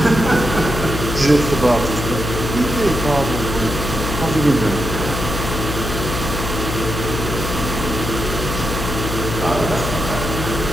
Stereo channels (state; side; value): noise; left; hum, 4 dB below the sound